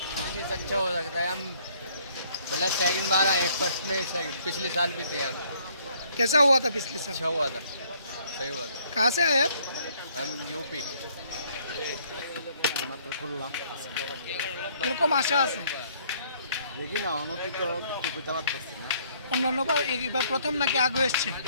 अच्छा हो सकता है, हम पहले सेकंड बार आए, फर्स्ट में पिछले साल भी थे हम। कैसा हुआ था पिछले साल? अच्छा हुआ था, सही हुआ था। कहाँ से आए आप? हम यूपी। মাত্র খুললাম এরকম আশা আছে দেখি না অনতিত কিছু চালাতে পারছি না। অন্যান্যবার এবার প্রথম নাকি আগে এসছে?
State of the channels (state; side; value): inverted; both; correlation -0.64